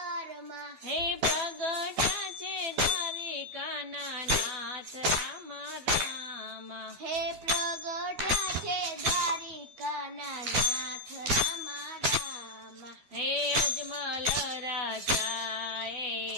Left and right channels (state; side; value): late; left; 12 ms